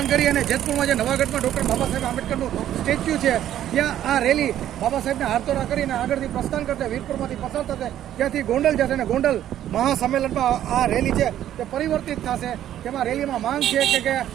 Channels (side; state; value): left; quieter; 11.6 dB